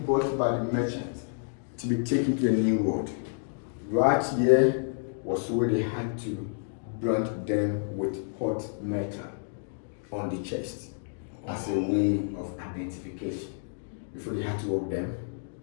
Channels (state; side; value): silent; right; digital silence